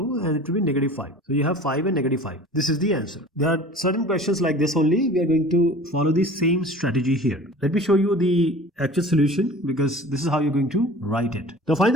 and it will be negative 5. So you have 5 and negative 5. This is the answer. There are certain questions like this only. We are going to follow the same strategy here. Let me show you the actual solution, because this is how you're going to write it. Now find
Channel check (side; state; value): both; normal; correlation 0.42